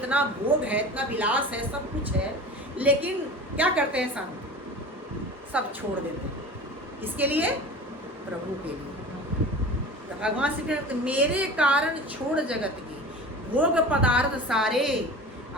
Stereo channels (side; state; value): both; normal; correlation 0.36